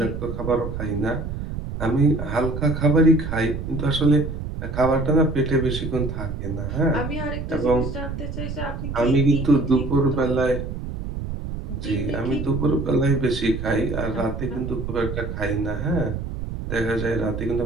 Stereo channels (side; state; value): right; noise; rumble, 6 dB below the sound